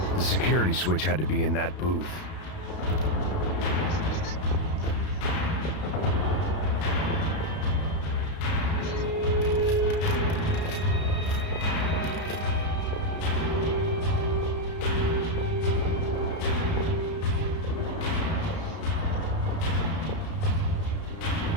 The security switch had to be in that booth.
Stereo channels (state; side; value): late; right; 32 ms